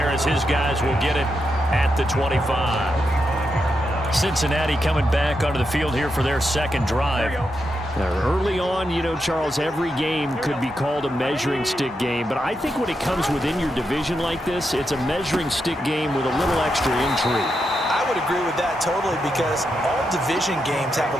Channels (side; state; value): both; normal; correlation 0.84